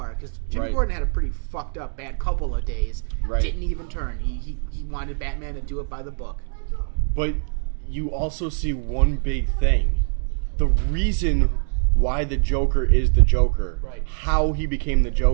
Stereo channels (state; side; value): silent; left; digital silence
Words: because Jim Right. Gordon had a pretty fucked up bad couple of days. Right. Didn't even turn. He wanted Batman to do it by the book. But you also see one big thing. The reason why the Joker is the Joker. Right. How he became the